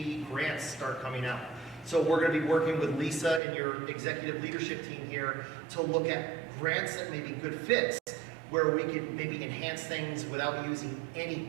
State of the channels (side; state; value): left; drops out; at 3.4 s